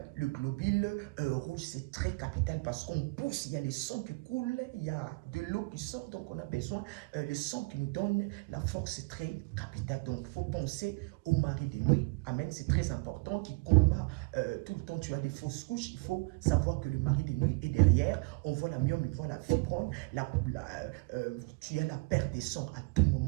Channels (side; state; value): left; quieter; 28.6 dB